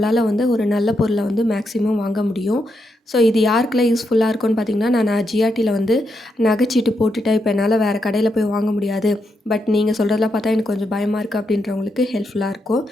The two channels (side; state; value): both; normal; correlation 0.82